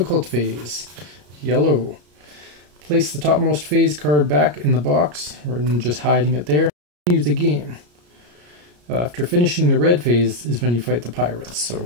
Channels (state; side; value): late; left; 34 ms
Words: phase. Yellow. Place the topmost phase card back in the box, or just hiding it there. Continue the game. After finishing the red phase is when you fight the pirates. So